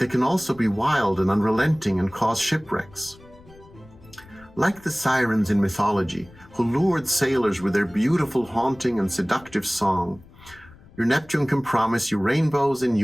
can also be wild and unrelenting and cause shipwrecks. Like the sirens in mythology, who lured sailors with their beautiful, haunting, and seductive song, your Neptune can promise you rainbows and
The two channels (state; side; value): noise; left; rumble, 24 dB below the sound